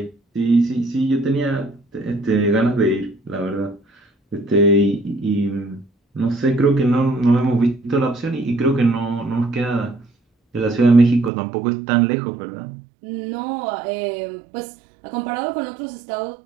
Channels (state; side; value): drops out; left; at 11.3 s